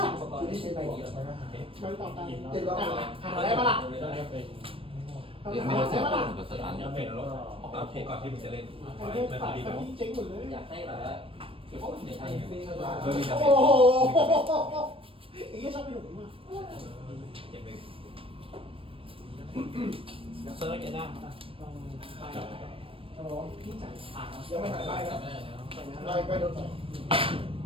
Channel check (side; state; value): left; late; 0.26 ms